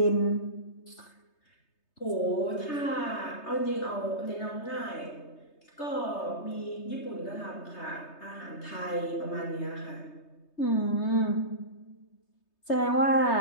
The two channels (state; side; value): late; right; 3.3 ms